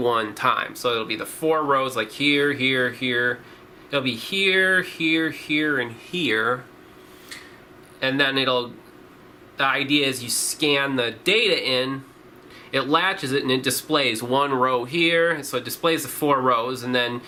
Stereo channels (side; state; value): both; identical; correlation 1.00